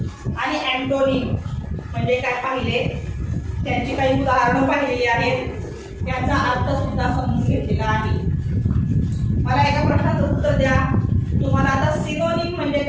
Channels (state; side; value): identical; both; correlation 1.00